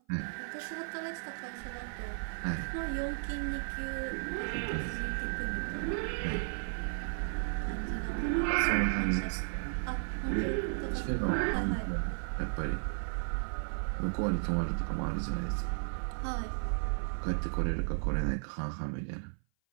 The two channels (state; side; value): silent; left; 55 dB below the other